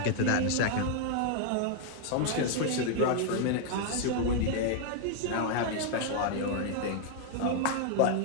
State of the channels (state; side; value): different; both; correlation 0.00